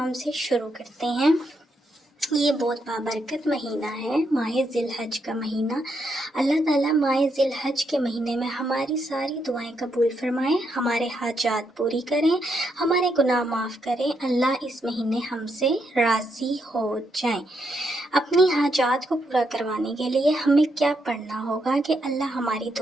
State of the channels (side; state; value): both; normal; correlation 0.79